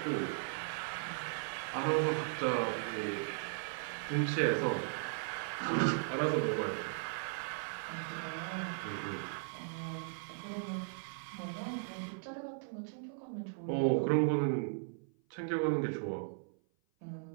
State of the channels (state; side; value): silent; left; 53 dB below the other